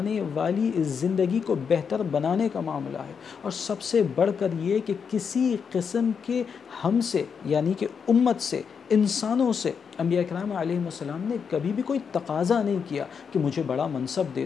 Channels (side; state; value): right; quieter; 6.4 dB